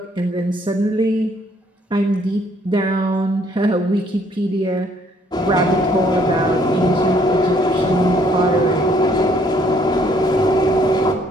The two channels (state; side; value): normal; both; correlation 0.64